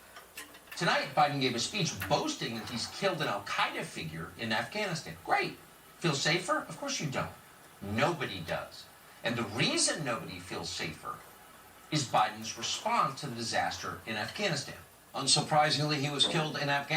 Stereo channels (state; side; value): identical; both; correlation 1.00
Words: Tonight, Biden gave a speech boasting that he's killed an al-Qaeda figure in Afghanistan. Great. Feel safer? Of course you don't. Nobody does. And the reason nobody feels safer is Biden's response to the disaster in Afghanistan. Unsurprisingly, he was killed in